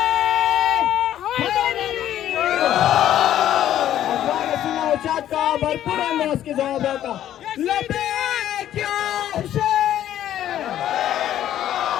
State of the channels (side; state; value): right; quieter; 11.7 dB